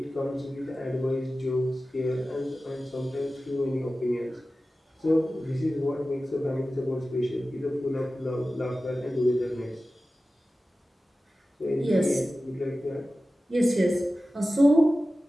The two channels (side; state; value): both; normal; correlation 0.95